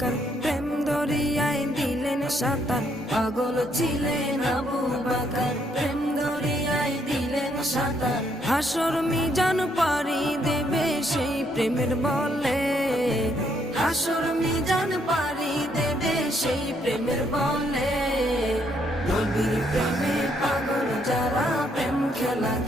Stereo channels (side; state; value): both; normal; correlation 0.72